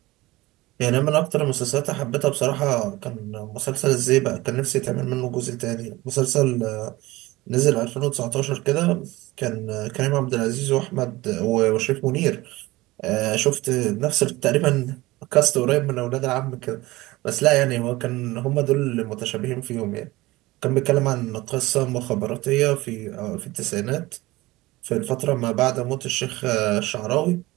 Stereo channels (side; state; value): left; quieter; 19.8 dB